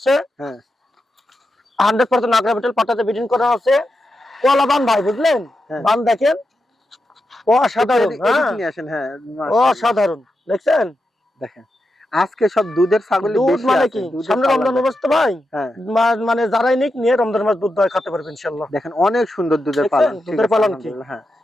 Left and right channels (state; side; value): normal; both; correlation 0.87